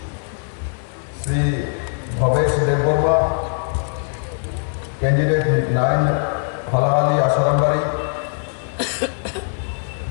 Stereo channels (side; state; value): right; silent; 61 dB below the other